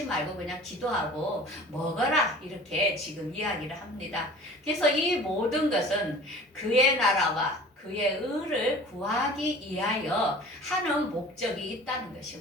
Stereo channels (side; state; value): both; normal; correlation 0.44